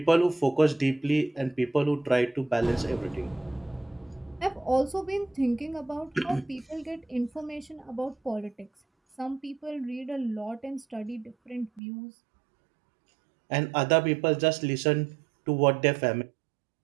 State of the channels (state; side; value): drops out; left; at 11.8 s